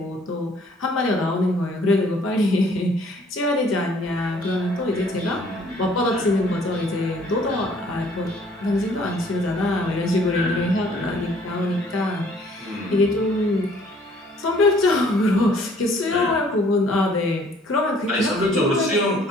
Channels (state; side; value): normal; both; correlation 0.58